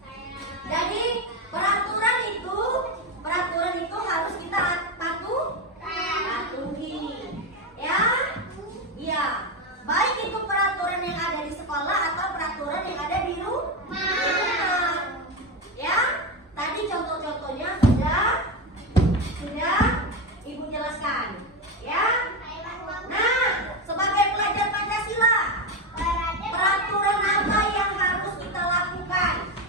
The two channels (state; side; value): normal; both; correlation 0.14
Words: Jadi peraturan itu harus kita patuhi, ya. Iya, baik itu peraturan yang ada di sekolah atau peraturan yang ada di rumah. Ya, tadi contoh-contohnya sudah Ibu jelaskan. Ya. Nah, sebagai pelajar Pancasila, peraturan apa yang harus kita lakukan?